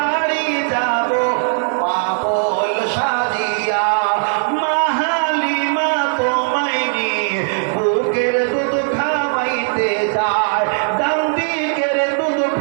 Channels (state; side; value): silent; left; digital silence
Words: যাব পাগল সাজিয়া। বুকের দুধ খাওয়াইতে যায়, ডান দিকের দুধ